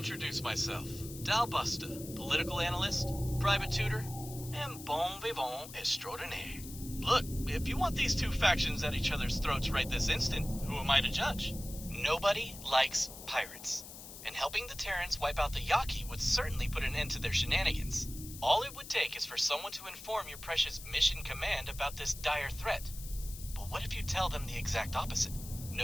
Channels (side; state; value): left; noise; hiss, 13 dB below the sound